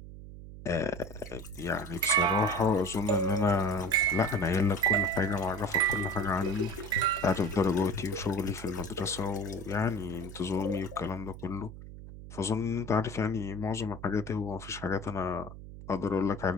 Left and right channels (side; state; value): right; noise; hum, 13 dB below the sound